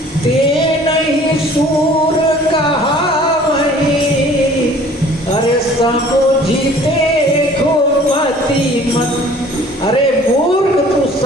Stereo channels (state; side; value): normal; both; correlation 0.51